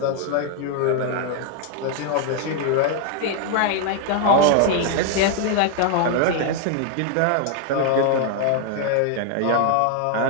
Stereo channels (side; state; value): both; different; correlation 0.00